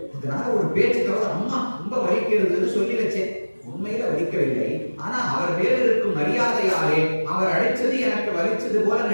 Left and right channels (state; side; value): inverted; both; correlation -1.00